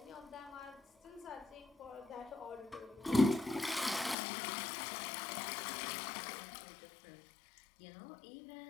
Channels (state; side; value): drops out; right; at 4.2 s